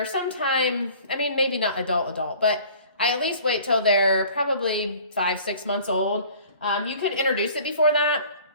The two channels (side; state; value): both; inverted; correlation -0.48